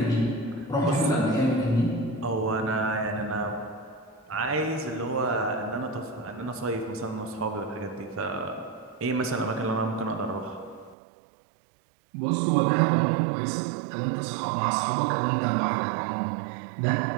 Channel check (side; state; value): left; drops out; at 11.0 s